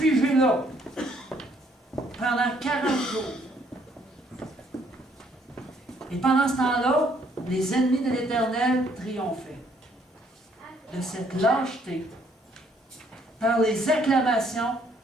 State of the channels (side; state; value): both; normal; correlation 0.66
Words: là pendant 40 jours. Et pendant ce temps-là, les ennemis de l'Éternel triomphaient de cette lâcheté par les acclamations